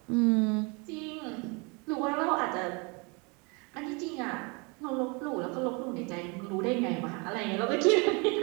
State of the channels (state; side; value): quieter; left; 30.7 dB